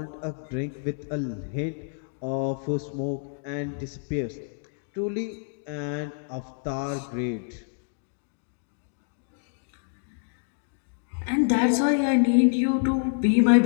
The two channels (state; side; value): silent; right; digital silence